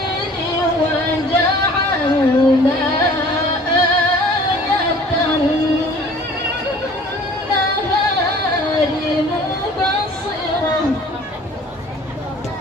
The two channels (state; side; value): normal; both; correlation 0.49